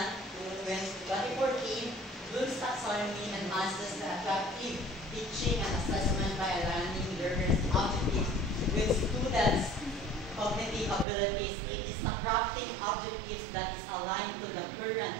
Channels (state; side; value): drops out; left; at 11.1 s